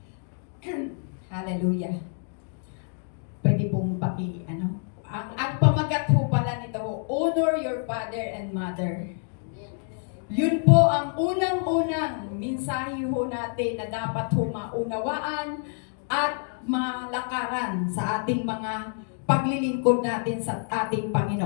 Hallelujah. Pwede pong ang pamagat po pala nito, honor your father and mother. Yun po ang unang-unang mensahe ho natin na dapat ho maunawaan at malakaran sa ating mga paglilingkod natin sa ating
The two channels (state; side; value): silent; right; 55 dB below the other